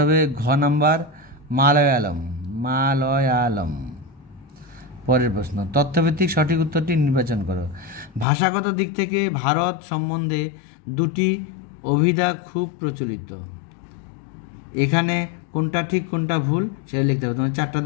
হবে ঘ নাম্বার, মালয়ালম। মালয়ালম। পরের প্রশ্ন, তথ্যভিত্তিক সঠিক উত্তরটি নির্বাচন করো। ভাষাগত দিক থেকে ভারত সম্বন্ধে 2টি অভিধা খুব প্রচলিত। এখানে কোনটা ঠিক কোনটা ভুল সেটা লিখতে হবে। তোমার 4টা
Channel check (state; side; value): drops out; right; at 8.2 s